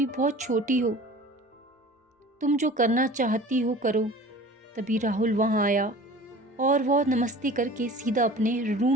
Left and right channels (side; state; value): both; normal; correlation 0.42